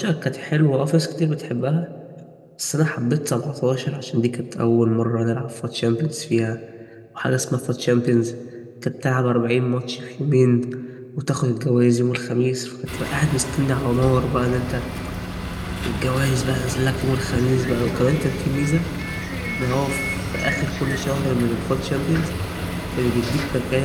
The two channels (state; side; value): identical; both; correlation 1.00